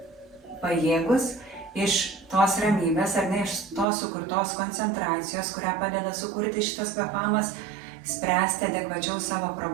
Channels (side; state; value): left; drops out; at 3.9 s